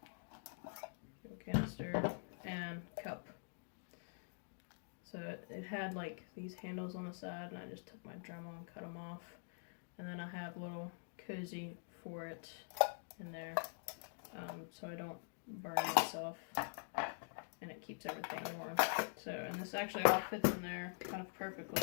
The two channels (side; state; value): right; silent; digital silence